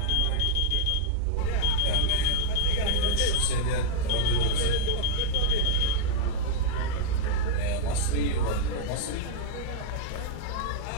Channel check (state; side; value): different; both; correlation -0.01